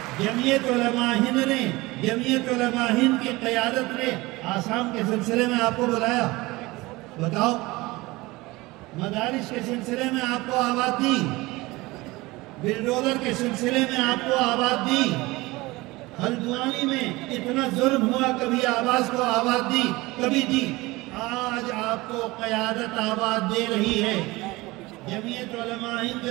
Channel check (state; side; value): quieter; left; 21.2 dB